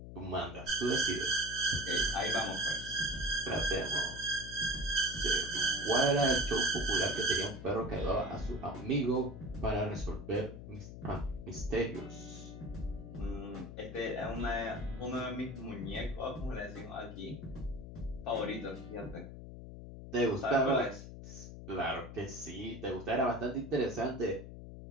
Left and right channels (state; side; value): noise; left; hum, 11 dB below the sound